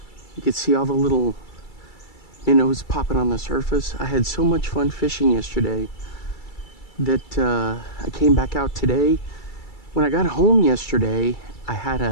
You could see all the little minnows popping on the surface. I had so much fun fishing yesterday that I came back out today. When I got home yesterday, I had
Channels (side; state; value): right; late; 2.3 ms